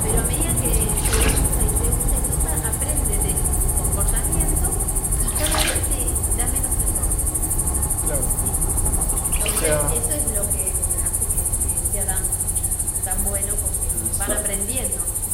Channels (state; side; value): identical; both; correlation 1.00